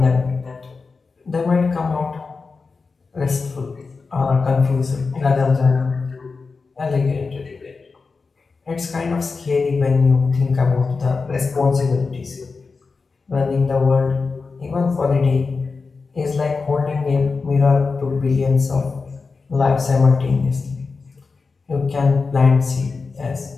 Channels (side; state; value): right; quieter; 4.4 dB